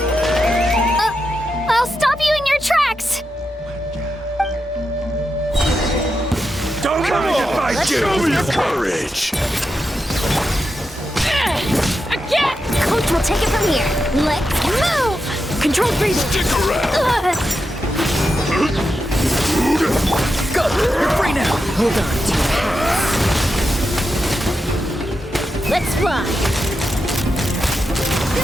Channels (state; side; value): normal; both; correlation 0.87